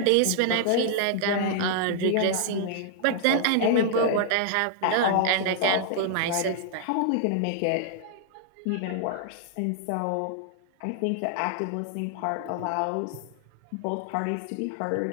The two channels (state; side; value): different; both; correlation -0.01